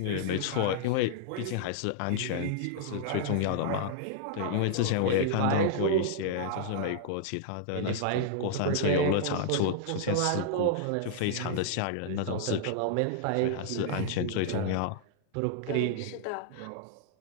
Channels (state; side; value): different; both; correlation -0.01